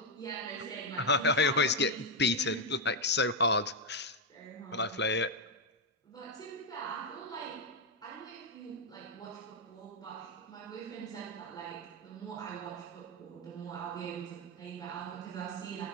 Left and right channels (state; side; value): normal; both; correlation 0.02